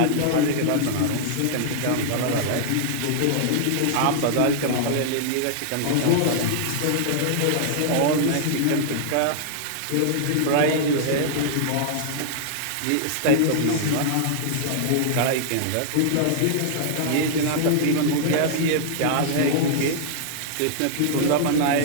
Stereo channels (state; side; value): different; both; correlation -0.01